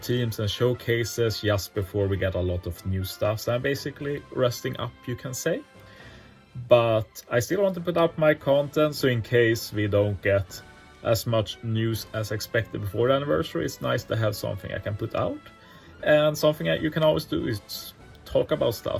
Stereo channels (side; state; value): both; identical; correlation 1.00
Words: and showcases just before we get a lot of new stuff. So I'm basically resting up, you can say. But I still want to put up my content, so in case we don't get as much news as expected before the anniversary, it's nice to have something I can put out. And something that you can always do is talk about